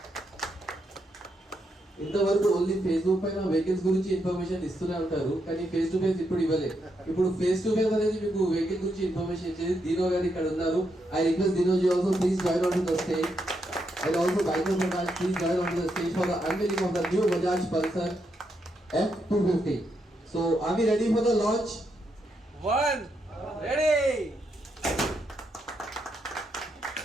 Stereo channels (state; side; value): normal; both; correlation 0.80